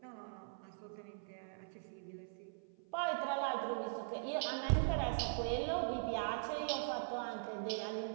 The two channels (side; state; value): left; silent; 50 dB below the other